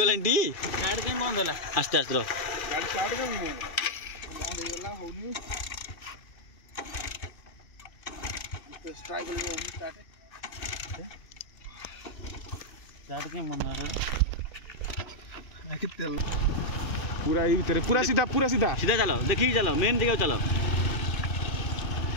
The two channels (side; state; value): right; late; 2.4 ms